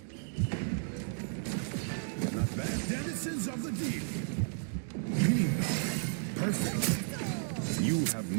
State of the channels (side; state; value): left; silent; digital silence